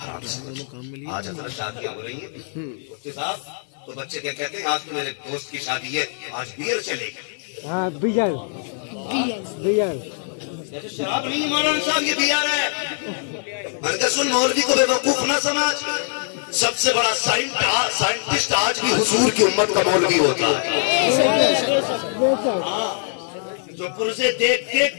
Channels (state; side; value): silent; right; 64 dB below the other